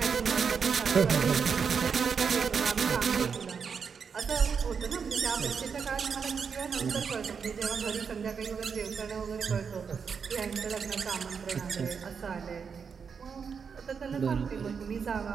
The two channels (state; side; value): quieter; left; 6.2 dB